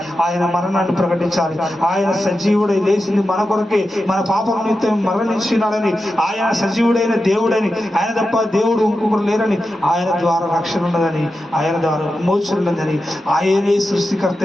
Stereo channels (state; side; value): normal; both; correlation 0.90